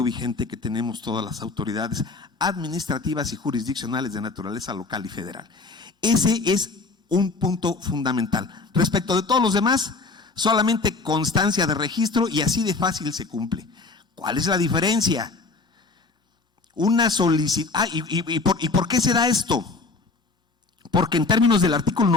vigente que tenemos todas las autoridades administrativas y jurisdiccionales de naturaleza local y federal. Ese es un punto fundamental. Respecto de todos los demás, solamente constancia de registro y así de fácil se cumple. ¿Cuál es la diferencia? Una solicitud. ¿Y por qué se da esto? Porque en términos del artículo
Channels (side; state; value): right; quieter; 3.8 dB